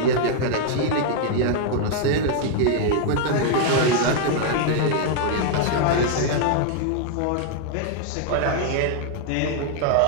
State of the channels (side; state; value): both; different; correlation 0.00